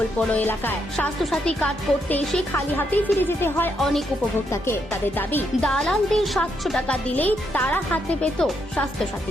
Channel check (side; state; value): both; normal; correlation 0.78